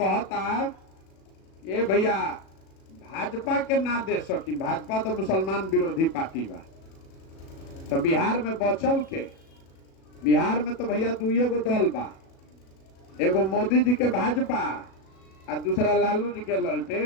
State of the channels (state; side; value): late; right; 37 ms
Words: ये भैया भाजपा के ना दे सकी, भाजपा तो मुसलमान विरोधी पार्टी बा। तो बिहार में बचल के, बिहार में तो भैया दुइये गो दल बा, एगो मोदी जी के भाजपा और दूसरा लालू जी के